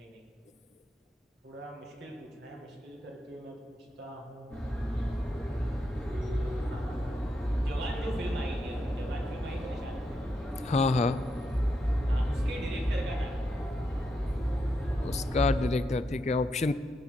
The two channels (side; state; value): both; normal; correlation 0.82